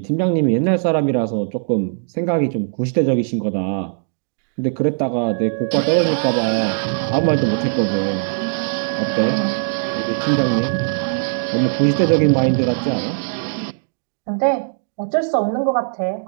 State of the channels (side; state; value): left; silent; digital silence